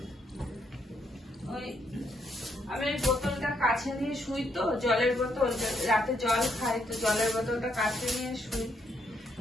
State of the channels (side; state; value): both; normal; correlation 0.75